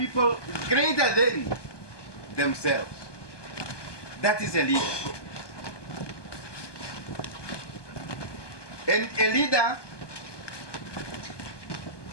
greater than themselves. That is a leader. And a leader,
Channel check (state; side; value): late; right; 1.2 ms